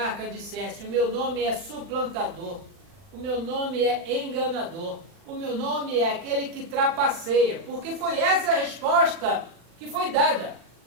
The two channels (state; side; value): late; left; 40 ms